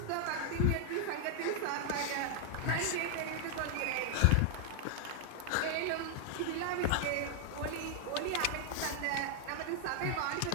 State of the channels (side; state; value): both; different; correlation 0.00